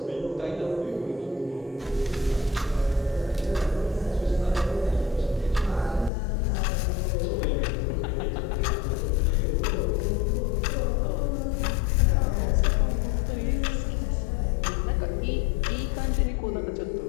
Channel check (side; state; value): right; drops out; at 6.1 s